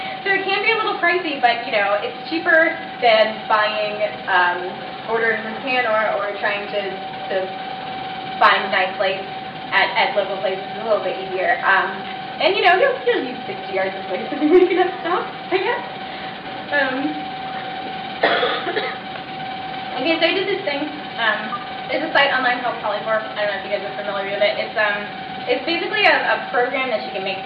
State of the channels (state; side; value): identical; both; correlation 1.00